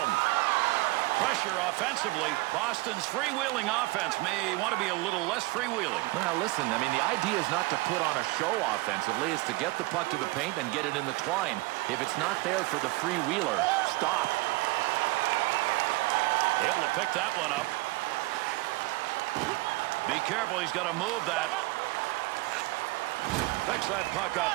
Pressure offensively. Boston's freewheeling offense may want to be a little less freewheeling. Well, listen, I mean, the idea is not to put on a show offensively. It's to get the puck to the paint and get it in the twine. If it's not there for the freewheeler, stop. Able to pick that one up. Be careful, he's got to move that. Picks that puck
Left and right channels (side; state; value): left; quieter; 22.2 dB